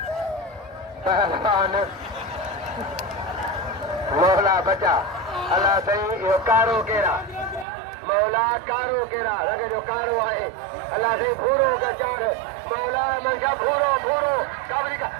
पहलवान मौला बचा अल्लाह सही यो कारो केरा मौला कारो केरा लगे जो कारो है अल्लाह से भूरो का चार मौला मंशा भूरो काबरी का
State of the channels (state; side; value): drops out; left; at 7.7 s